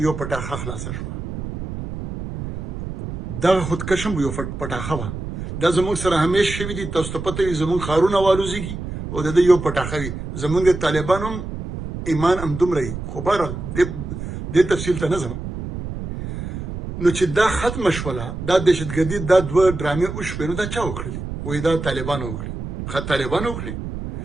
یو پټاخه خلاصه شوه. دغه خودکشم یو پټاخه وه. دا زموږ سره همیش شوي دي. تاسو ته پته وي زموږ ښارونه والوزېږي او د ده یو پټاخه وي. زموږ د طالبانو هم ایمان همدومره وي، خو بهرحال دې تفصیل ته نه ځم. نو چې دا ختمه شوله، دا دهشتګردي دا 2 ډرامې وشوې، نو دا چا وکړلې؟ وایي دا طالبانو وکړې. ښه، طالبانو وکړې.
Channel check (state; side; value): noise; right; rumble, 7 dB below the sound